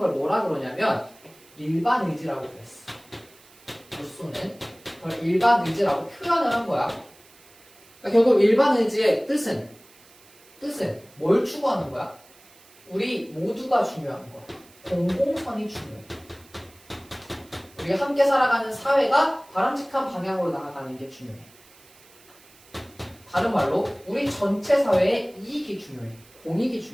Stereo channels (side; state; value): right; noise; hiss, 26 dB below the sound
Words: 뭐라 그러냐면 일반 의지라고 그랬어. 루소는 그걸 일반 의지라고 표현을 한 거야. 그러니까 결국 일반 의지의 뜻은 뭘 추구하는 거야? 우리 모두가 중요한 거야. 공공선이 중요해. 우리가 함께 살아가는 사회가 바람직한 방향으로 나아가는 게 중요해. 다른 말로 우리 전체 사회의 이익이 중요해. 공익이